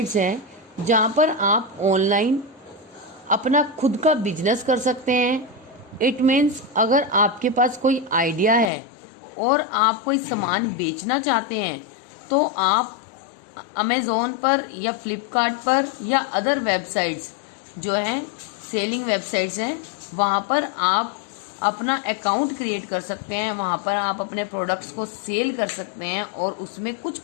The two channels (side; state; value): right; drops out; at 8.7 s